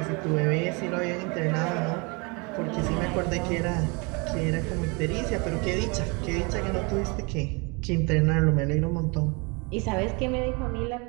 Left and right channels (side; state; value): left; quieter; 30.0 dB